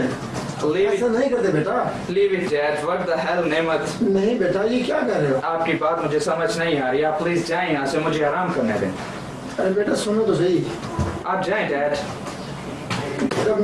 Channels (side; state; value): both; identical; correlation 1.00